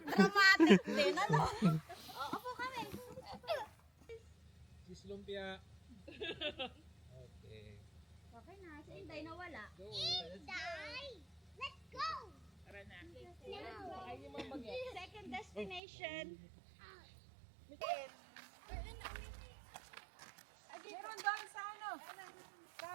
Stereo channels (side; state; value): left; drops out; at 15.8 s